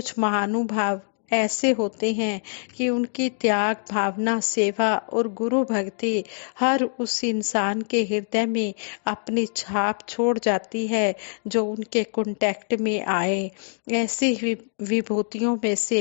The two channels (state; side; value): silent; right; 61 dB below the other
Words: महानुभाव ऐसे होते हैं कि उनकी त्याग भावना, सेवा और गुरु भक्ति हर उस इंसान के हृदय में अपनी छाप छोड़ जाती है जो उनके कांटेक्ट में आए। ऐसी विभूतियों में